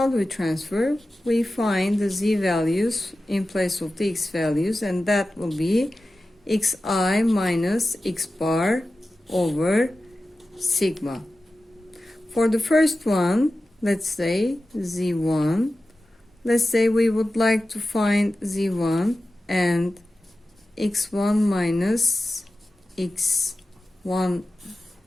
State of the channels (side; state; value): both; normal; correlation 0.94